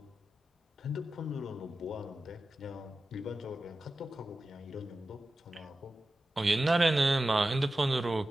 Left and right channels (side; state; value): both; normal; correlation 0.93